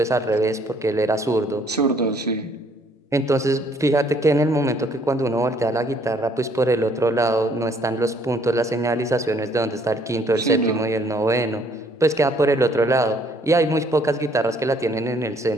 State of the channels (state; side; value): normal; both; correlation 0.64